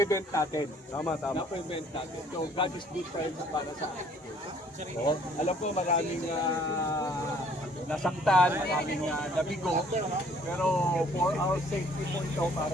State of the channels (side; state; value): both; normal; correlation 0.59